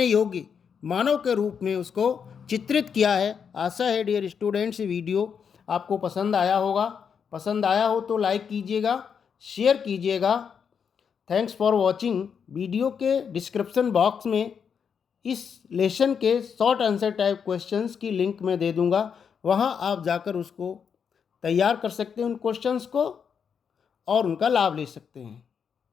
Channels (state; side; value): quieter; right; 6.9 dB